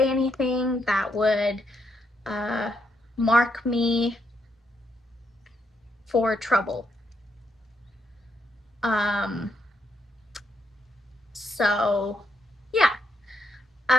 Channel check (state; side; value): normal; both; correlation 0.78